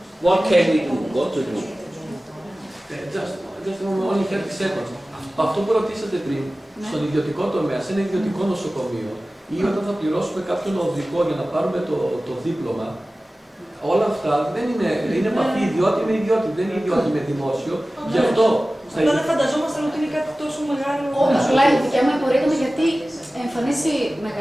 What can we do? What to do? Just only 30 seconds. Αυτό που ρωτήσατε πριν, στον ιδιωτικό τομέα, σε ένα ιδιωτικό νοσοκομείο, ή όταν θα πληρώσουμε κάποιον οδηγό για να πάρουμε το δίπλωμα, όλα αυτά δεν είναι επαφή ιδιώτη με ιδιώτη, δεν είναι ιδιώτη με δημόσιο. Γι' αυτό. Αυτά δεν φανταζόμασταν ότι είναι κάτι τόσο μεγάλο. Απλά η δικιά μου απορία ήταν γιατί εμφανίζει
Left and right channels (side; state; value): both; normal; correlation 0.96